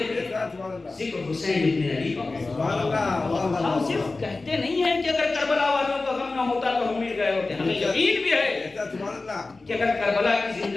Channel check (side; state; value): right; quieter; 3.5 dB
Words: کے ذکر حسین ابن علی کا. ہم صرف کہتے نہیں ہیں کہ اگر کربلا والوں کا غم نہ ہوتا تو ہم مل گئے ہوتے. ہمیں یقین بھی ہے کہ اگر کربلا کی